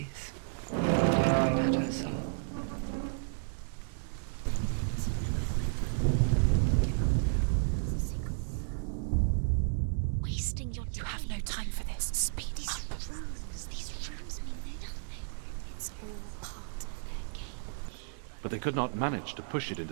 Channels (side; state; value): left; silent; digital silence